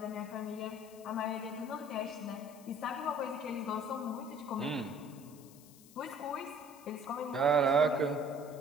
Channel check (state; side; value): noise; left; hiss, 22 dB below the sound